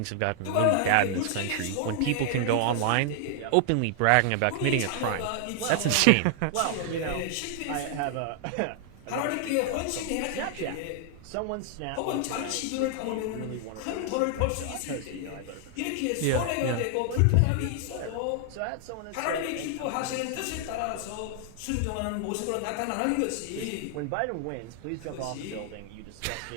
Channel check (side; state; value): both; different; correlation 0.00